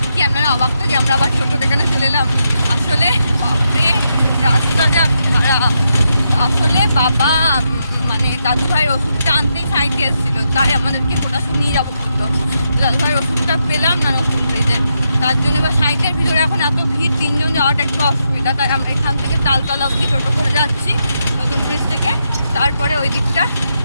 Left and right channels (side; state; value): both; inverted; correlation -0.83